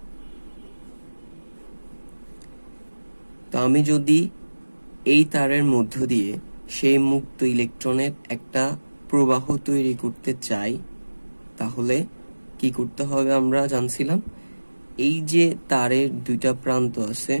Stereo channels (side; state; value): both; inverted; correlation -1.00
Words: তো আমি যদি এই তারের মধ্য দিয়ে সেই মুক্ত ইলেকট্রনের একটা প্রবাহ তৈরি করতে চাই, তাহলে কি করতে হবে আমরা জানছিলাম। এই যে তারের দুইটা প্রান্ত আছে,